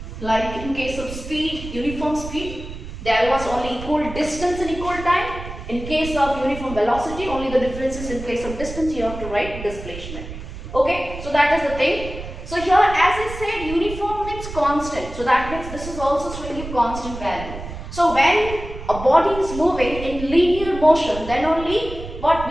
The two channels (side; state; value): right; noise; rumble, 10 dB below the sound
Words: Like in case of speed, uniform speed, there was only equal distance in equal time. In case of uniform velocity, only the difference is in place of distance, you have to write displacement. Okay, so that is the thing. So here, as I said, uniform means constant. So that means this is also showing you constant value. So when a body is moving in linear motion, then only what